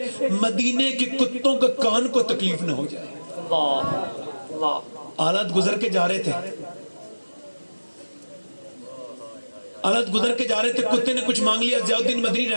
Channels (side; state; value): both; inverted; correlation -1.00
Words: مدینے کے کتوں کے کان کو تکلیف نہ ہو جائے. حالات گزر کے جا رہے تھے، حالت گزر کے جا رہے تھے، کتے نے کچھ مانگ لیا. ضیاء الدین مدنی